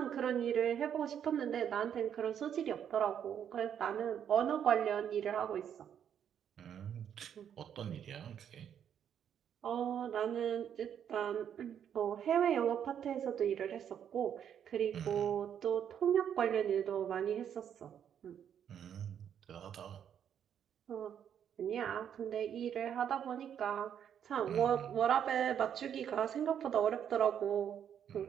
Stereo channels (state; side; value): quieter; left; 8.9 dB